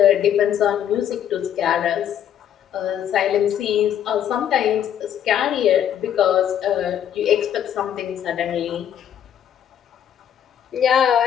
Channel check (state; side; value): quieter; right; 9.8 dB